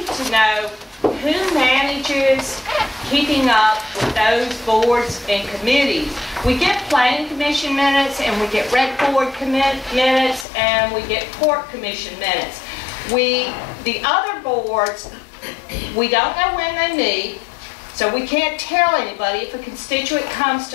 to know who manages keeping up with those boards and committees. We get planning commission minutes and we get rec board minutes and we get court commission minutes. The other boards, we don't know when they meet, so we can't tell anybody. If a constituent comes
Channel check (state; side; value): drops out; right; at 10.5 s